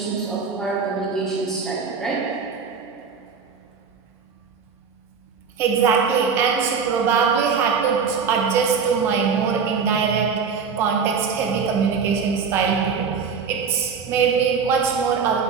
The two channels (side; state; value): left; quieter; 5.9 dB